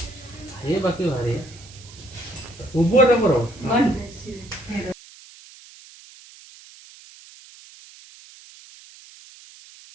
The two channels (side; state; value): right; noise; hiss, 21 dB below the sound